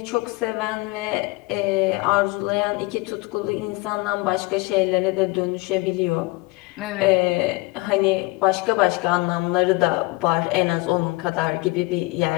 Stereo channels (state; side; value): quieter; right; 23.8 dB